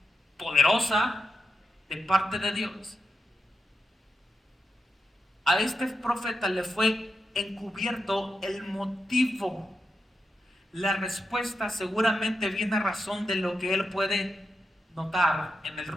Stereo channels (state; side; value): normal; both; correlation 0.86